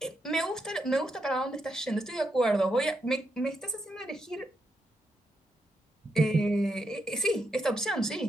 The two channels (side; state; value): both; normal; correlation 0.81